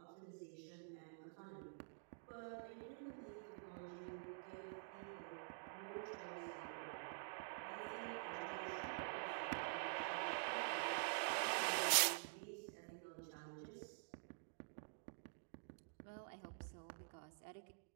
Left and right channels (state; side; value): silent; left; digital silence